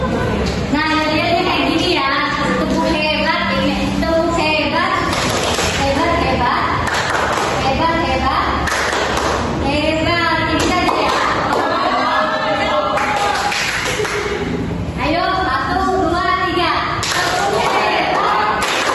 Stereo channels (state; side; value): identical; both; correlation 1.00